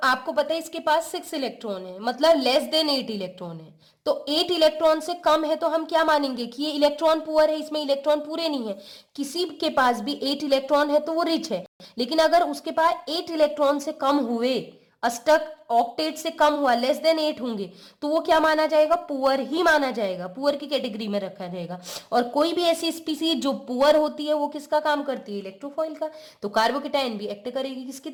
आपको पता है इसके पास 6 इलेक्ट्रॉन है, मतलब लेस देन 8 इलेक्ट्रॉन है, तो 8 इलेक्ट्रॉन से कम है तो हम क्या मानेंगे कि ये इलेक्ट्रॉन पुअर है, इसमें इलेक्ट्रॉन पूरे नहीं है। किसी के पास भी 8 इलेक्ट्रॉन है तो वो रिच है, लेकिन अगर उसके पास 8 इलेक्ट्रॉन से कम हुए, अष्टक ऑक्टेट से कम हुआ, लेस देन 8 होंगे, तो वो क्या माना जाएगा, पुअर ही माना जाएगा, पुअर की कैटेगरी में रखा जाएगा। और कोई भी ऐसी स्पीसीज जो पुअर होती है वो किसका काम करती है, इलेक्ट्रोफॉइल का। तो कार्बोकेटायन भी एक्ट करेगी किसकी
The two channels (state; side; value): identical; both; correlation 1.00